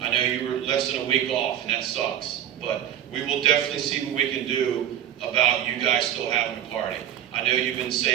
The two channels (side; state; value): left; quieter; 10.7 dB